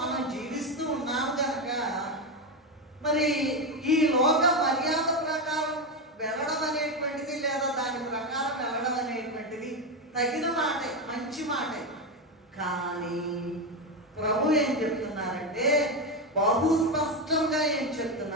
జీవిస్తూ ఉన్నాం కనుక మరి ఈ లోక మర్యాద ప్రకారం వెళ్ళడం అనేటువంటిది, లేదా దాని ప్రకారం వెళ్ళడం అనేటువంటిది తగిన మాటే, మంచి మాటే. కానీ ప్రభు ఏం చెప్తున్నారంటే, బహు స్పష్టంగా ఏం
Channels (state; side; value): normal; both; correlation 0.12